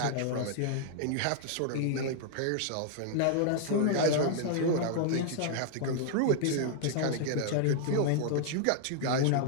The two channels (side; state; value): both; different; correlation -0.01